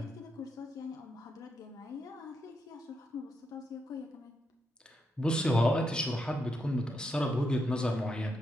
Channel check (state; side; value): normal; both; correlation 0.82